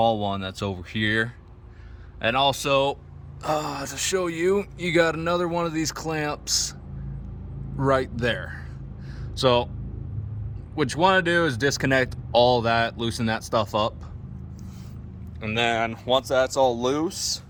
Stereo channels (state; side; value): identical; both; correlation 1.00